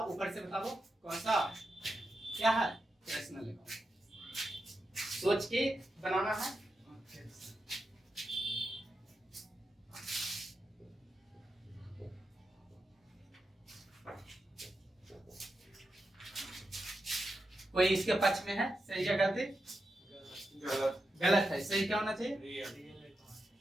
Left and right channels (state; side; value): normal; both; correlation 0.88